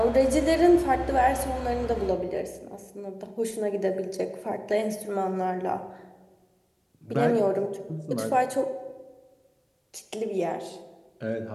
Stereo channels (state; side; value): identical; both; correlation 1.00